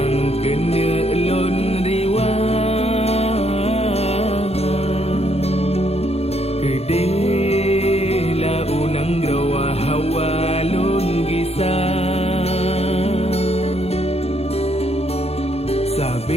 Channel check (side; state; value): right; late; 0.30 ms